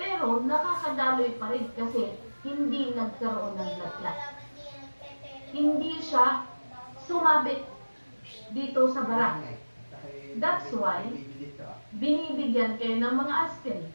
nakakadaloy pa rin kasi hindi nagkaroon ng blood clot. Hindi siya sumabit dito sa bara. That's why, binibigyan kayo ng mga aspirin,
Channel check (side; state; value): both; inverted; correlation -1.00